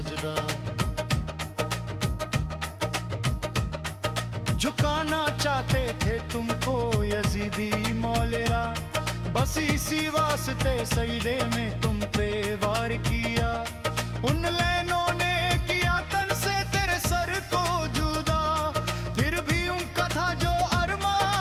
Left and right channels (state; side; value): identical; both; correlation 1.00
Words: झुकाना चाहते थे तुमको यजीदी मौलेरा, बस इसी वास्ते सजदे में तुम पे वार किया, उन लैनों ने किया तन से तेरे सर को जुदा, फिर भी उनका था जो